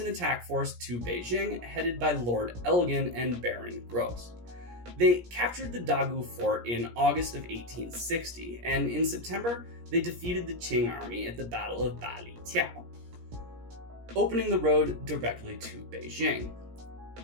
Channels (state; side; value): late; left; 17 ms